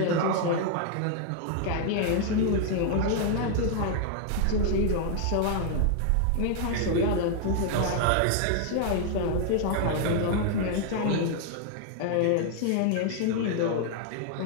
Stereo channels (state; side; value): different; both; correlation 0.00